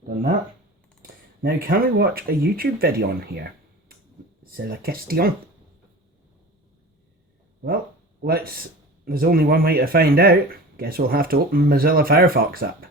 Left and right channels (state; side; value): normal; both; correlation 0.36